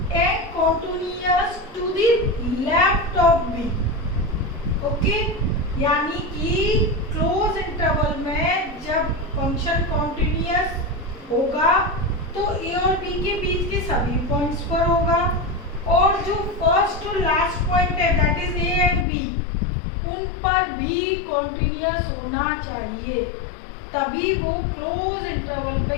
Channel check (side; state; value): right; drops out; at 19.1 s